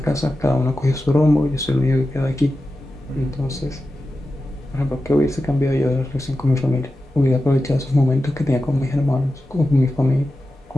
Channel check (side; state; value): both; normal; correlation 0.92